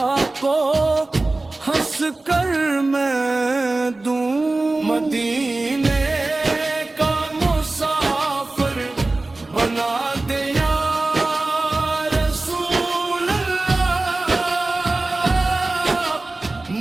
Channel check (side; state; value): left; quieter; 3.1 dB